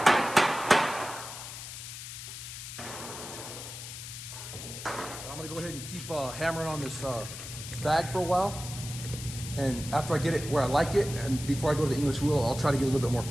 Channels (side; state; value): left; noise; hiss, 10 dB below the sound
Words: I'm gonna go ahead and keep hammering on this bag for a while, and after I get it where I like it, and before I go to the English wheel, I'll try to get a little bit more